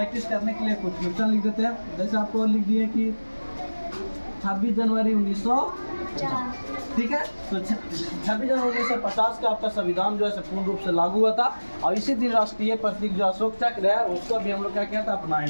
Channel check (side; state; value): both; inverted; correlation -1.00